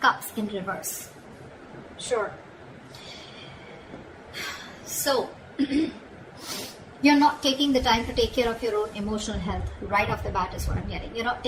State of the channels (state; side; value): identical; both; correlation 1.00